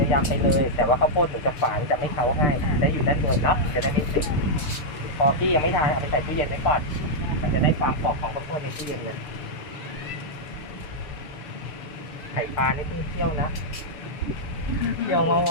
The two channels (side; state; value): right; late; 6.8 ms